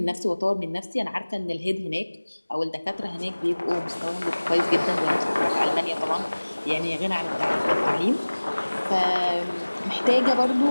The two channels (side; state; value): both; inverted; correlation -1.00